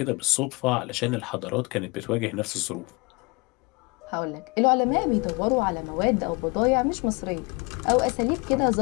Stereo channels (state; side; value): quieter; right; 27.5 dB